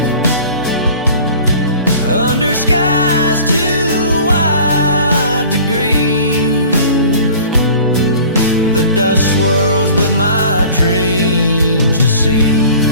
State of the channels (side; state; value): both; inverted; correlation -0.46